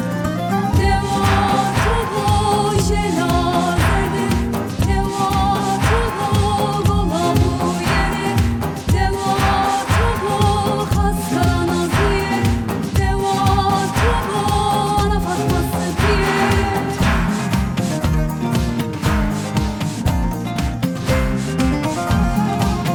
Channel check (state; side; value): identical; both; correlation 1.00